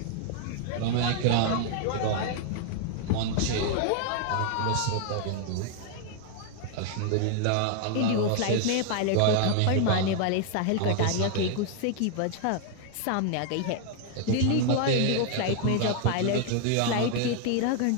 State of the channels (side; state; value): both; different; correlation 0.00